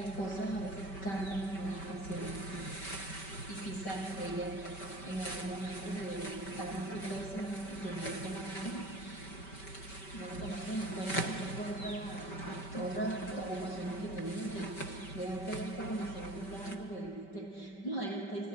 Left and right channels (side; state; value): right; late; 5.2 ms